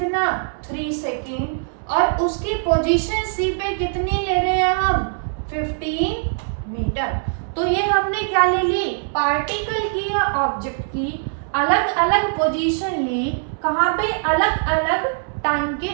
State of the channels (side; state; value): left; silent; 65 dB below the other